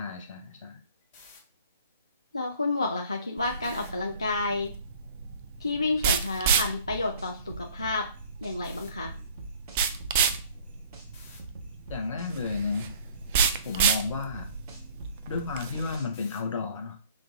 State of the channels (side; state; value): both; inverted; correlation -0.52